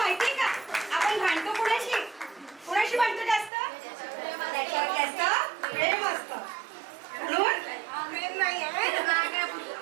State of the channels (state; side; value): drops out; left; at 3.5 s